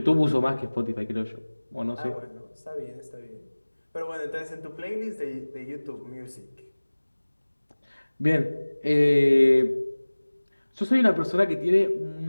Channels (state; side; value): inverted; both; correlation -1.00